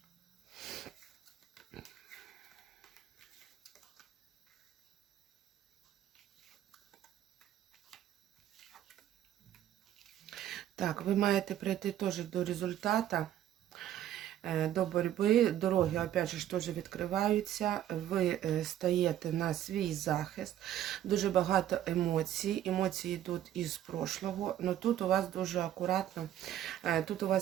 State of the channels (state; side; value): quieter; left; 11.6 dB